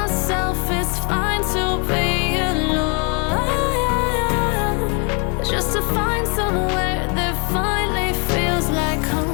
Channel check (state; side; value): quieter; right; 36.6 dB